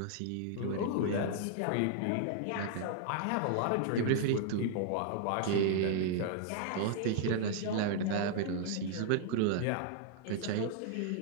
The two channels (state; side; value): different; both; correlation -0.01